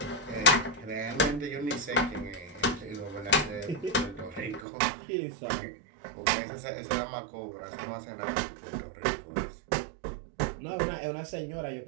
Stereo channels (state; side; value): drops out; left; at 4.7 s